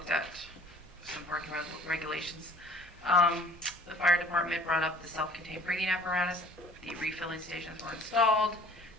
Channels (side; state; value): both; normal; correlation 0.52